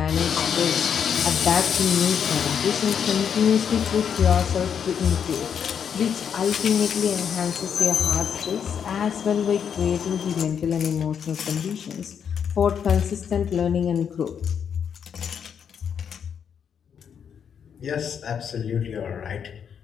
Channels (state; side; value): quieter; right; 7.7 dB